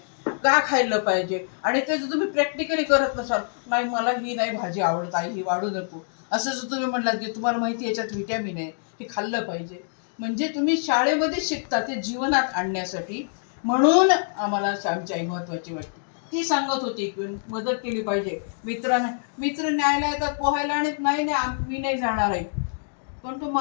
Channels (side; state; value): right; silent; digital silence